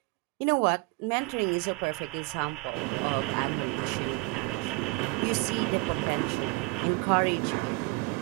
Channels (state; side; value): quieter; left; 24.9 dB